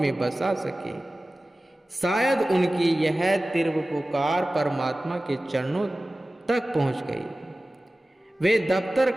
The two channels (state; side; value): normal; both; correlation 0.96